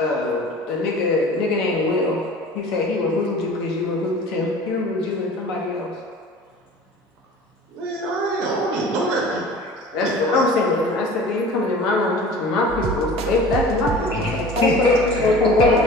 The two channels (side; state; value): both; normal; correlation 0.41